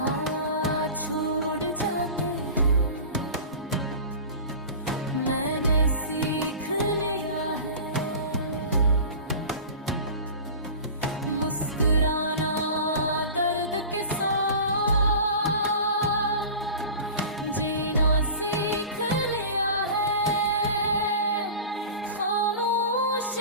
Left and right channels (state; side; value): inverted; both; correlation -0.35